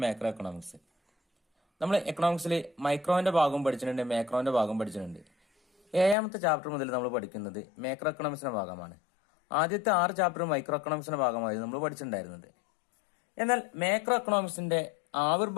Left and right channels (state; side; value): drops out; right; at 6.2 s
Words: macro economics. നമ്മൾ എക്കണോമിക്സിൽ മൈക്രോന്റെ ഭാഗം പഠിച്ചിട്ടുണ്ട്, മാക്രോന്റെ ഭാഗം പഠിച്ചിട്ടുണ്ട്. 7ാമത്തെ ചാപ്റ്റർ മുതൽ നമ്മൾ പഠിക്കുന്നത് മാക്രോ എക്കണോമിക്സിന്റെ ഭാഗമാണ്. ആദ്യത്തെ 6 ചാപ്റ്റർ മൈക്രോ എക്കണോമിക്സിന്റെ ഭാഗമായിരുന്നു നമ്മൾ പഠിച്ചിട്ടുണ്ടായിരുന്നത്. എന്നാൽ മാക്രോ എക്കണോമിക്സിന്റെ